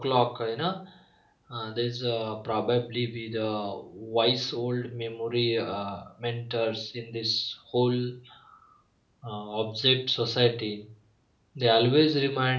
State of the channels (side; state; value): both; identical; correlation 1.00